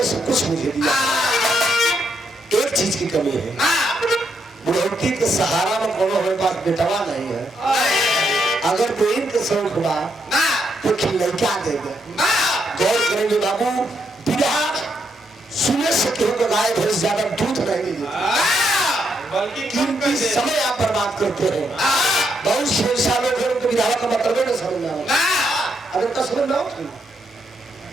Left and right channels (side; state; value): both; normal; correlation 0.78